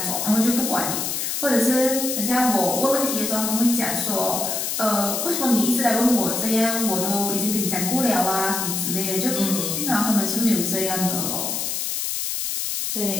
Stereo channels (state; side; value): noise; left; hiss, 2 dB below the sound